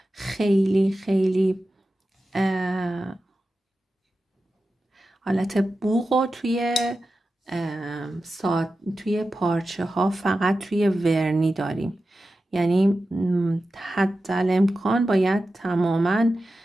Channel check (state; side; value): normal; both; correlation 0.93